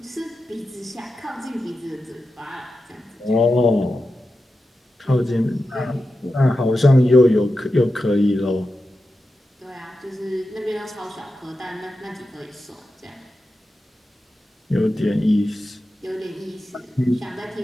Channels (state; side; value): normal; both; correlation 0.91